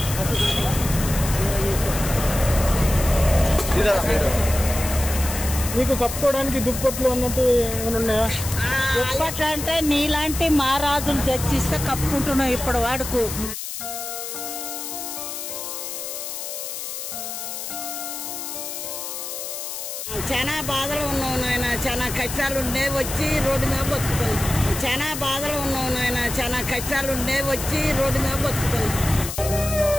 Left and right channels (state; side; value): noise; left; hiss, 7 dB below the sound